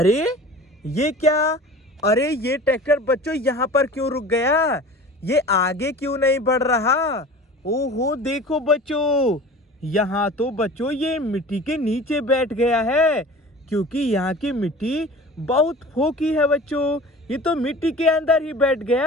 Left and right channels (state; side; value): normal; both; correlation 0.39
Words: ये क्या? अरे ये ट्रैक्टर बच्चों यहाँ पर क्यों रुक गया? ये आगे क्यों नहीं बढ़ रहा? ओहो देखो बच्चों, यहाँ तो बच्चों ये मिट्टी के नीचे बैठ गया है, क्योंकि यहाँ की मिट्टी बहुत फोकी है बच्चों। ये तो मिट्टी के अंदर ही बैठ